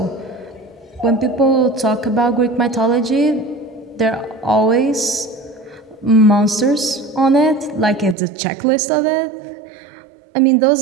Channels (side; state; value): left; drops out; at 8.2 s